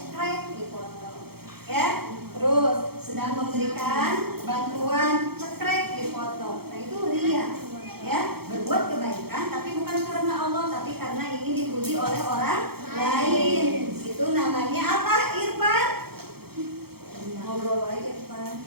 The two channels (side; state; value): left; late; 0.96 ms